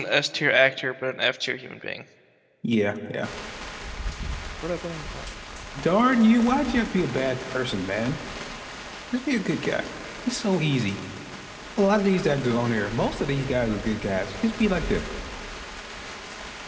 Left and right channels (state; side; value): identical; both; correlation 1.00